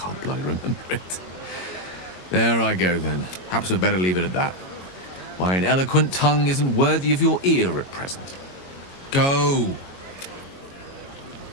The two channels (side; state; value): right; late; 22 ms